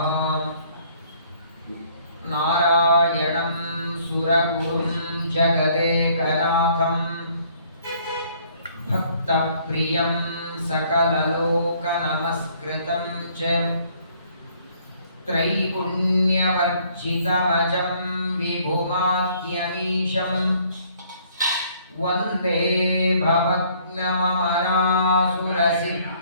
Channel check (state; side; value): inverted; both; correlation -0.62